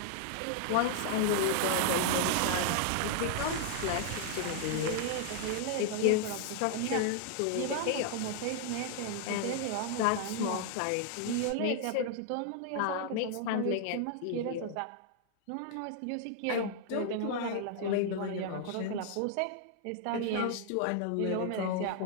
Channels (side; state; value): both; different; correlation 0.00